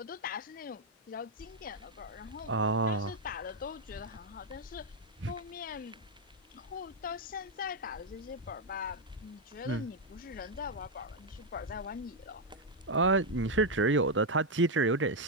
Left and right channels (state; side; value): normal; both; correlation 0.01